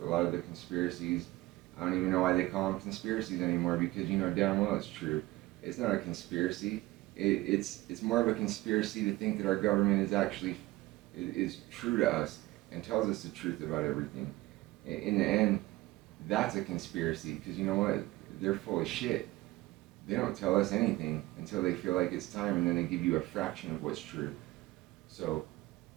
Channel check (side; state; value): left; quieter; 18.7 dB